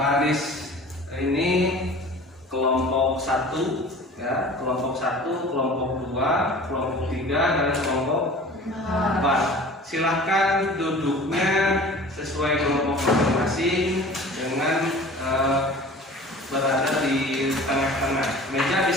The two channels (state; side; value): normal; both; correlation 0.43